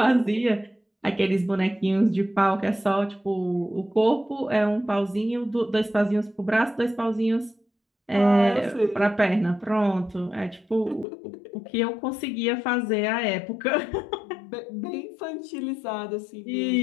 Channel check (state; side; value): drops out; right; at 11.1 s